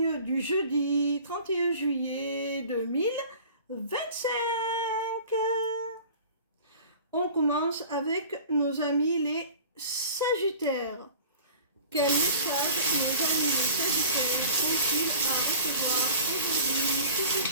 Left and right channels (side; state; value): both; inverted; correlation -0.43